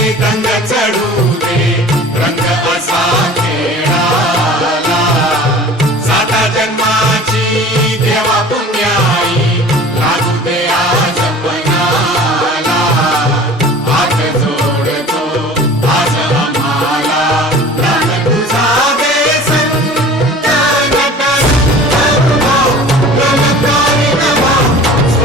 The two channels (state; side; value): normal; both; correlation 0.42